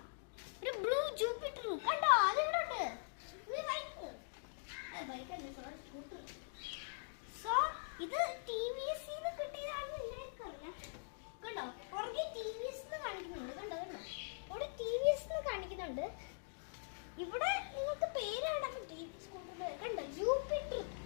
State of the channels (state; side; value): silent; right; digital silence